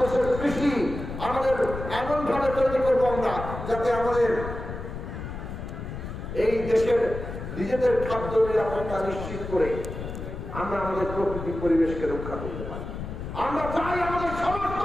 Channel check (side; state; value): left; noise; rumble, 8 dB below the sound